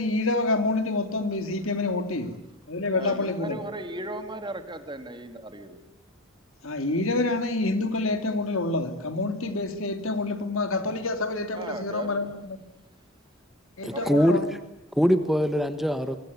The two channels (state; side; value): normal; both; correlation 0.33